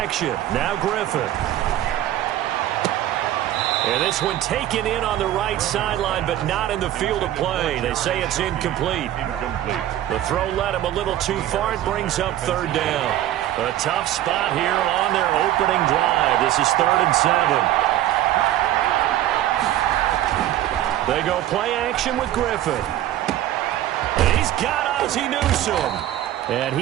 action. Now Griffin. And this one taken in on the right sideline, but not in the field of play. They say it's incomplete. The throw led him a little too far. It brings up 3rd down. A tough spot here on their opening drive. This is 3rd and 7. They go play action with Griffin. He's got Ozzie Newsome. And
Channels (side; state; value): left; quieter; 13.1 dB